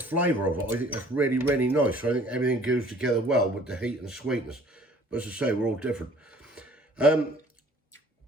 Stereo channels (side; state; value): both; normal; correlation 0.54